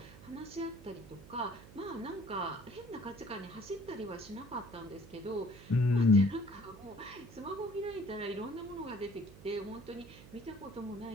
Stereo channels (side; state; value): right; noise; hum, 18 dB below the sound